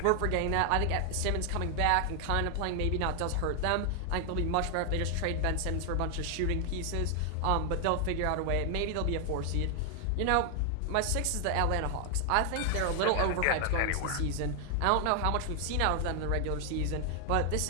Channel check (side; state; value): both; different; correlation 0.00